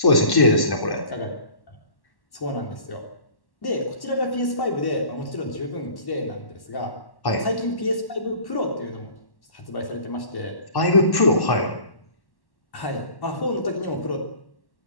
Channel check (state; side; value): late; right; 1.1 ms